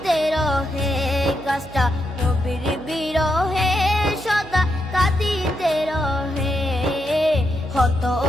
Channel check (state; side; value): noise; right; hum, 20 dB below the sound